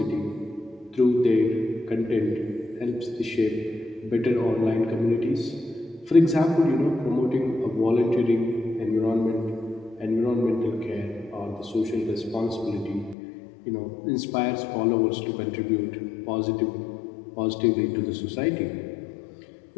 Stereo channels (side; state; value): right; drops out; at 13.2 s